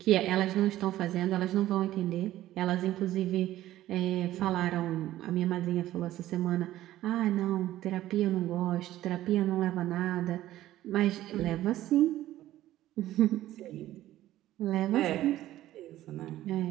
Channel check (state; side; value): quieter; left; 14.3 dB